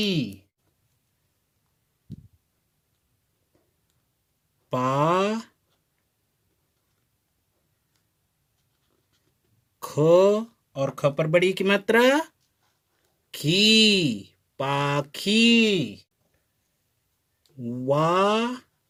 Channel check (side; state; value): both; identical; correlation 1.00